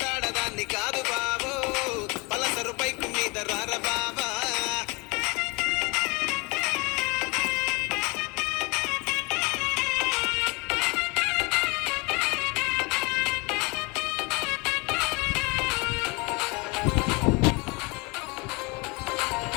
కాదు బాబు పలసరు పైకు మీద రార బాబా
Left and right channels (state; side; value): quieter; right; 27.7 dB